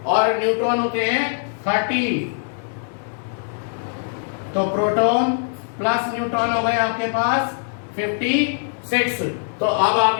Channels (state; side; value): silent; right; 59 dB below the other